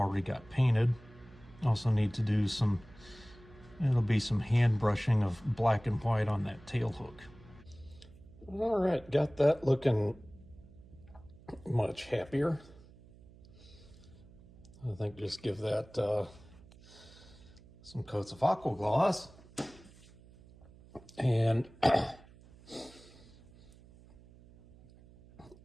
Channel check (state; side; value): noise; right; hum, 23 dB below the sound